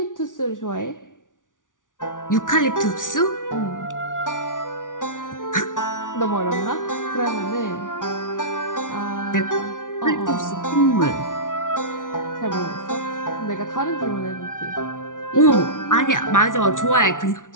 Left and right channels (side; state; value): right; late; 0.88 ms